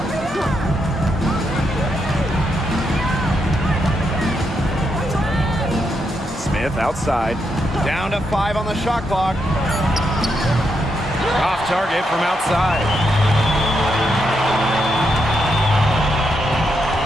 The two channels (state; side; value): normal; both; correlation 0.81